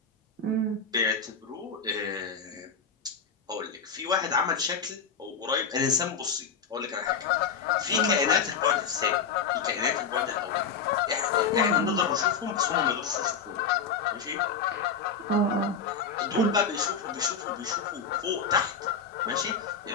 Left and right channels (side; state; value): right; quieter; 5.7 dB